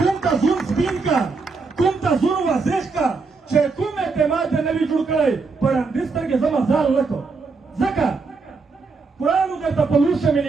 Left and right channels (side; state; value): left; quieter; 4.3 dB